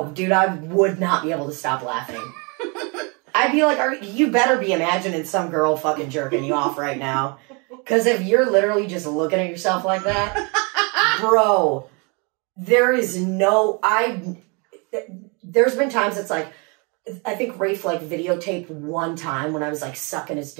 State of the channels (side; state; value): left; quieter; 32.0 dB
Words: dude, I would not be able to stop laughing. I'd be like, you better be imagining some girl fucking jerking you off right now. Because if you're literally just looking at yourself like that, bro, there is no... There's been times it's like, I think Rafe like videotaped one time when I was like sucking his